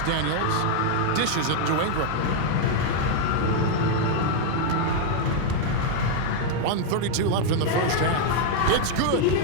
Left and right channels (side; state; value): both; different; correlation 0.00